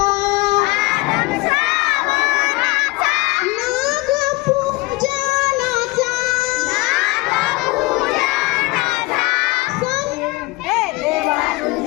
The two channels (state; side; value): quieter; right; 22.9 dB